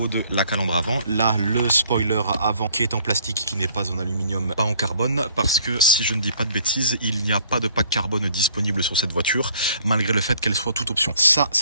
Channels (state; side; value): inverted; both; correlation -0.59